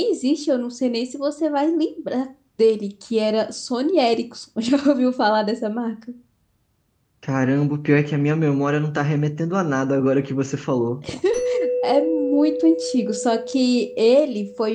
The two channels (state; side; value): identical; both; correlation 1.00